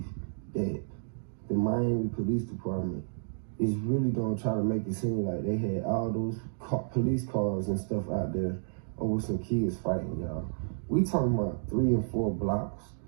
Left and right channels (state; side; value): silent; left; digital silence